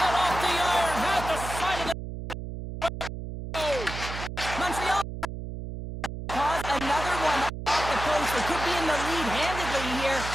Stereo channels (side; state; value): right; noise; hum, 8 dB below the sound